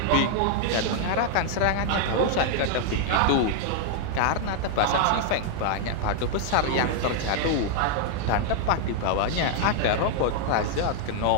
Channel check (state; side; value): different; both; correlation 0.00